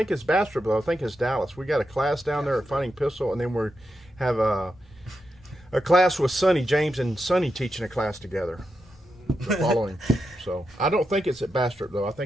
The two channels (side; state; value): both; normal; correlation 0.86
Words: it's Bastrop though. I think it's Dallas. We got a class down there at Fighting Pistol, and then we have a class with Sonny. James and Sonny teaching a class together. The following. So I don't think it's at Bastrop though. I